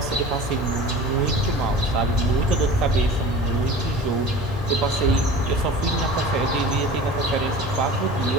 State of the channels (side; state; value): both; normal; correlation 0.38